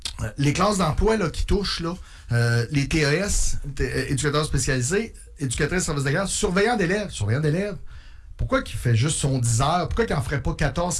les classes d'emploi là, qui touchent, là, les TES, éducateurs spécialisés, éducatrices service de garde, surveillants d'élèves. Pourquoi qu'il fait juste son 10 heures? Pourquoi qu'il n'en ferait pas 14,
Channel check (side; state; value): both; identical; correlation 1.00